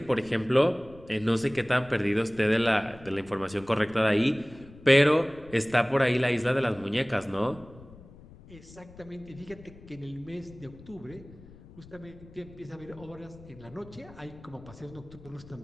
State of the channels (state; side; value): noise; left; rumble, 20 dB below the sound